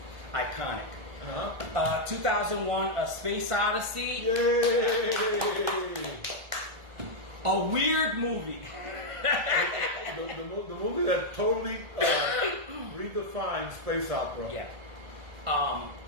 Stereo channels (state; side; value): late; left; 1.5 ms